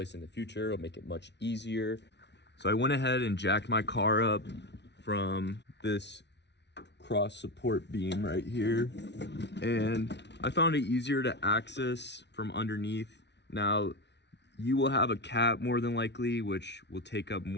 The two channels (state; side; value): late; right; 0.50 ms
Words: it in the future, it'll make it much easier. So I went ahead and jacked my car up from this cross support beam right here, and I found it easier to access from underneath. Now, you will have a cap more than likely, which will take up